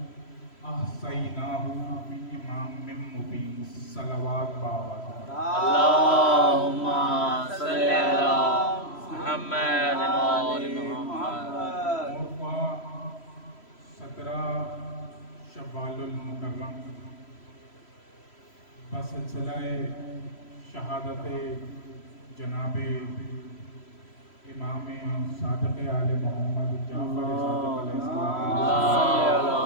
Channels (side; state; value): right; late; 3.0 ms